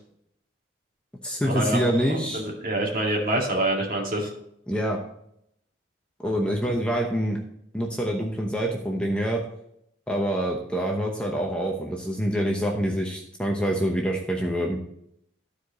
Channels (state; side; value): normal; both; correlation 0.62